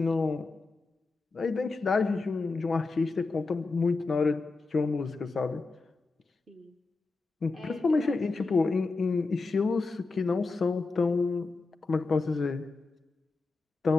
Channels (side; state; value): right; quieter; 3.8 dB